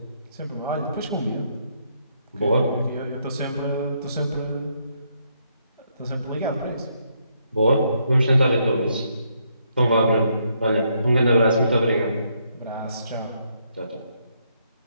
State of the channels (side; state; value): both; inverted; correlation -0.74